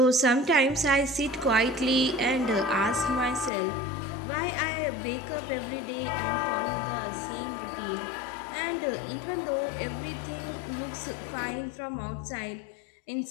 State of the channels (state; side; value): drops out; right; at 3.5 s